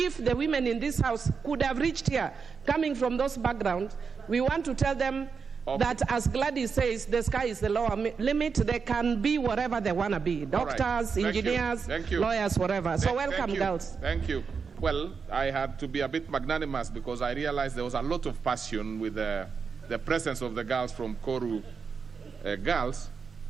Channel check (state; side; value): quieter; left; 5.6 dB